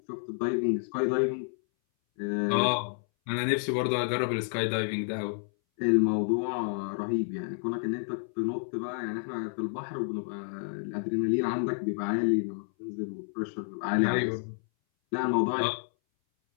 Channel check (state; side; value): silent; right; 58 dB below the other